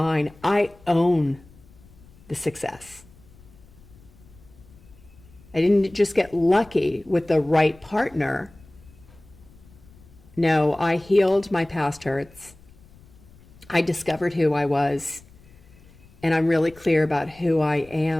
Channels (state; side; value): noise; left; rumble, 25 dB below the sound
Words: I own the success. I didn't just get lucky with the right partner. No, I healed my past hurts. I discovered who I was, and I'm really clear about who I